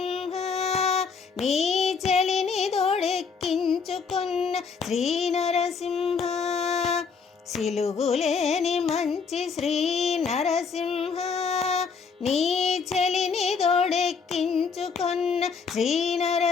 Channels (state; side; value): quieter; right; 5.5 dB